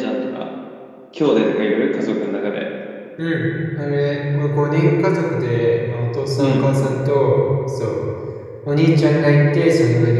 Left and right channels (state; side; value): identical; both; correlation 1.00